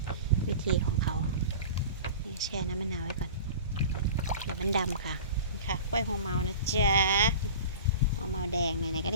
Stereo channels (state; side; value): inverted; both; correlation -0.37